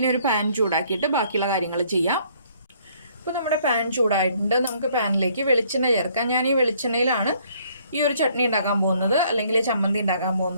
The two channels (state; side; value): inverted; both; correlation -0.63